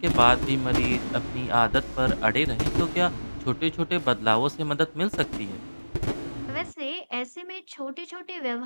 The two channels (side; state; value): both; inverted; correlation -1.00